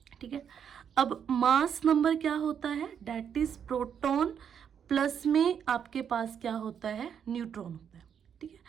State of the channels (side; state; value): left; quieter; 8.0 dB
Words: ठीक है, अब मास नंबर क्या होता है, दैट इज प्रोटॉन प्लस में आपके पास क्या होता है, न्यूट्रॉन होता है. ठीक है,